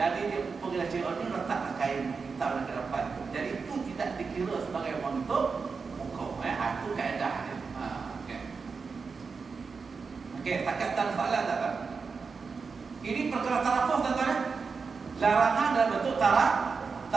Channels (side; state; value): left; quieter; 5.0 dB